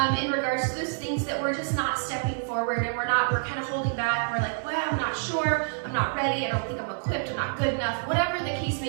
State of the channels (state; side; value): silent; left; digital silence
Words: in regards to those things that we're just not stepping forward and we're kind of holding back. We're like, well, I'm not sure, I'm not ready, I don't think I'm equipped, I'm not good enough, whatever the case